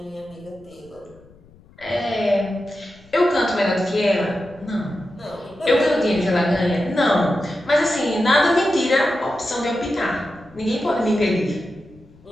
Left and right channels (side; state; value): left; noise; rumble, 26 dB below the sound